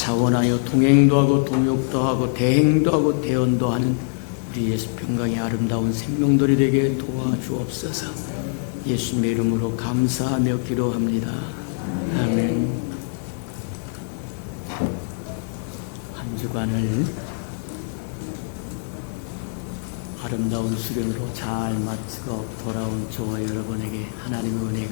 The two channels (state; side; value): silent; right; digital silence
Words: 동행도 하고 동역도 하고 대행도 하고 대언도 하는 우리 예수 평강의 아름다운 생명들이 되게 도와주옵소서. 예수님의 이름으로 감사하며 기도합니다. 아멘. 한 주간을 아름다운 수련으로 잘 마치고 돌아온 저와 여러분에게 하나님의